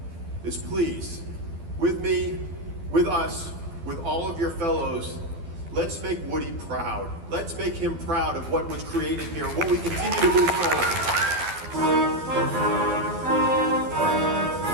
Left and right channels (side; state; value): left; late; 12 ms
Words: is please, with me, with us, with all of your fellows, let's make Woody proud. Let's make him proud of what was created here, what we continue to move forward.